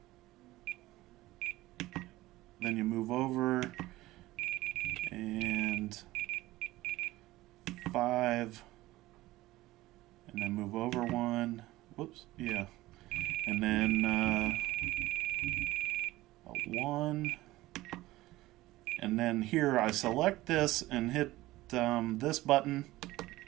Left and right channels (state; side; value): quieter; left; 17.6 dB